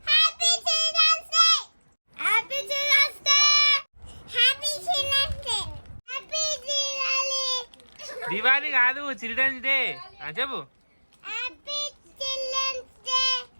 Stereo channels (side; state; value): both; inverted; correlation -1.00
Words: దివాళీ కాదు, చిల్డ్రన్స్ డే చెప్పు.